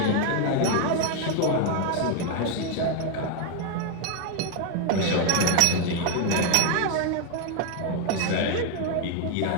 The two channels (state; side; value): different; both; correlation 0.01